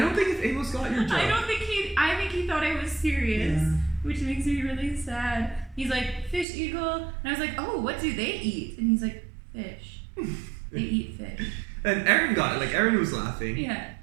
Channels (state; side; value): drops out; left; at 6.5 s